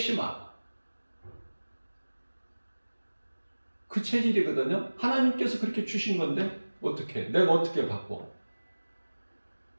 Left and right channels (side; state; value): both; inverted; correlation -1.00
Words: 그 체질이거든요. 하나님께서 그렇게 주신 건데 어떻게, 내가 어떻게 받고,